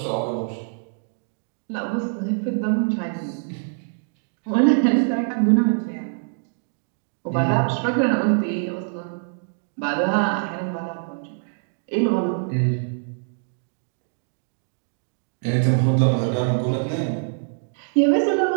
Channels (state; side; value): silent; left; digital silence